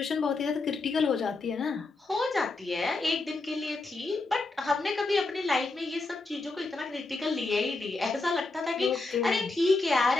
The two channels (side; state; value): right; quieter; 3.4 dB